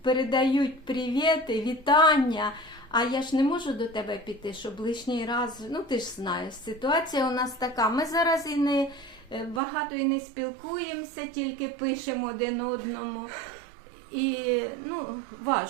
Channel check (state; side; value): drops out; left; at 9.6 s